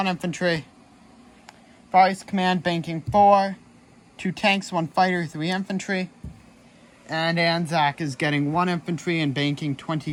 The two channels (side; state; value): both; identical; correlation 1.00